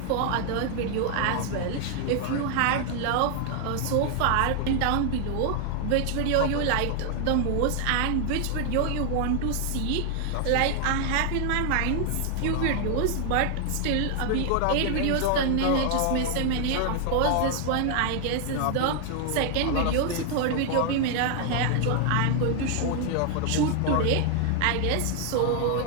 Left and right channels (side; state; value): both; different; correlation 0.00